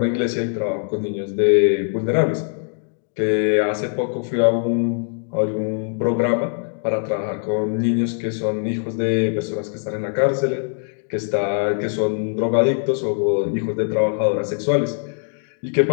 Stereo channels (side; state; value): right; silent; digital silence